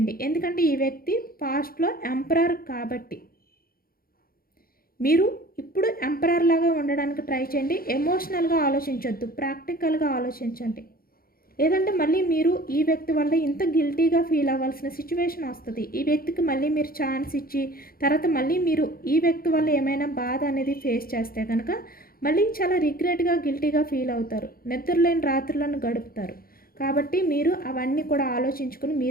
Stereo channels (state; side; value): late; right; 0.43 ms